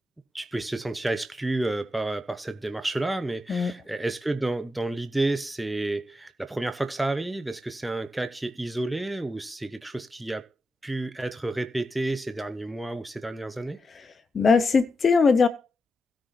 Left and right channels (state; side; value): normal; both; correlation 0.88